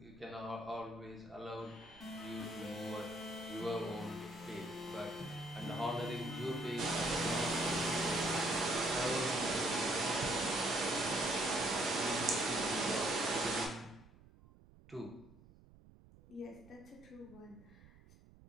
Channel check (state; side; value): noise; right; rumble, 23 dB below the sound